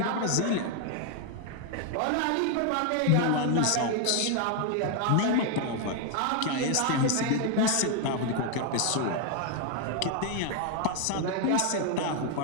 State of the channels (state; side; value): different; both; correlation 0.01